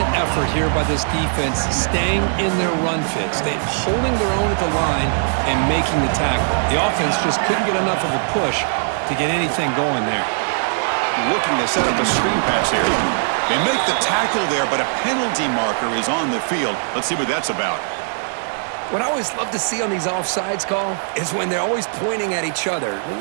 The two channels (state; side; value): silent; left; 61 dB below the other